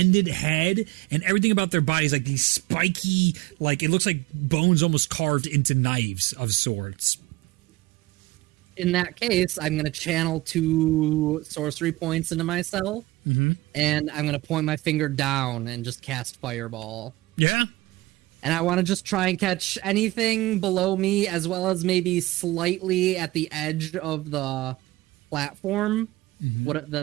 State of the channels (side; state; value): left; quieter; 19.1 dB